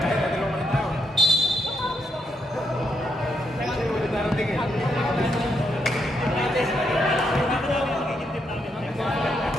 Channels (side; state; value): both; normal; correlation 0.78